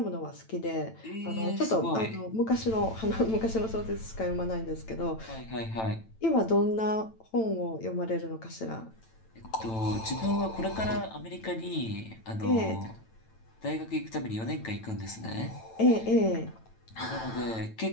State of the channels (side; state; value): right; late; 9.0 ms